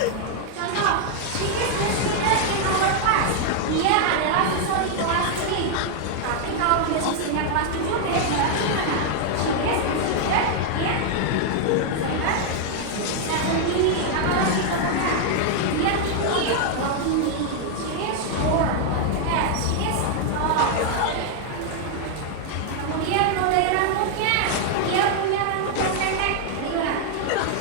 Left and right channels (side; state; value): both; different; correlation 0.00